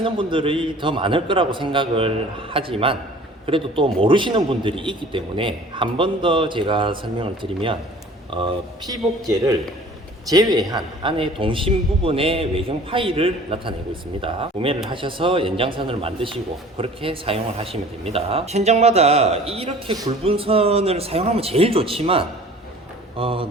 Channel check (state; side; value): normal; both; correlation 0.47